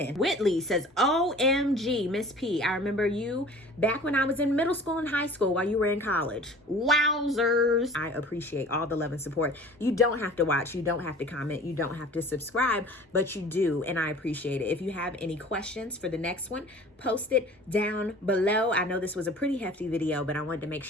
Whitley says, OMG, Miss P. I remember you back when I was in middle school and high school while you were in college. Wowzers. I appreciate all the love and support. You don't have to watch. You don't have to comment. You don't have to subscribe, but you do, and I appreciate it. If you have any questions for the next one, post it down below. I know this was a pretty hefty video, but I wanted to make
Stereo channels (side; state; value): both; normal; correlation 0.45